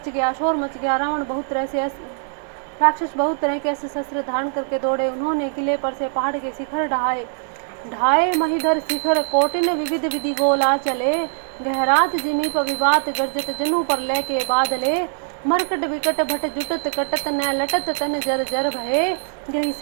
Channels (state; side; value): silent; left; digital silence